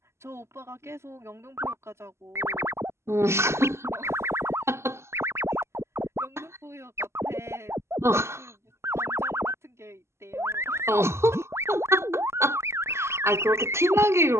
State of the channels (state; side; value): late; left; 0.13 ms